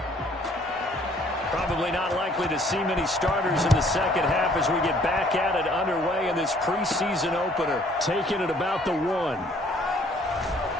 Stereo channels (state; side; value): normal; both; correlation 0.60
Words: Probably not likely to see many starters in the second half as we get back at it underway in this preseason opener. Taking it about the 1.